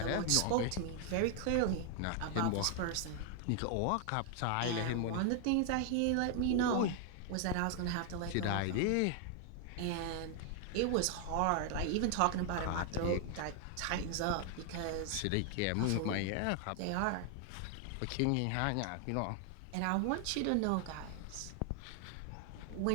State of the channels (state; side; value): different; both; correlation 0.00